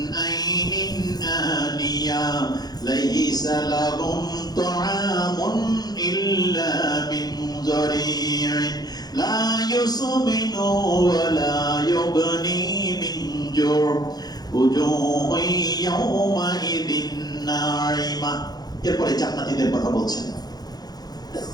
আইনিন আনিয়া লাইসা লাহুম তুআমুন ইল্লা মিন যরিন লা ইউসমিনু ওয়া লা ইউগনি মিন জুর উজুহু ইয়াওমাইযিন নাঈমা। এরপরে জান্নাতীদের কথা বলছেন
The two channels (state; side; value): late; right; 0.19 ms